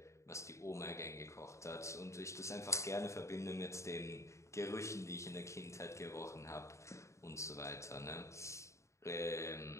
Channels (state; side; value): late; right; 0.14 ms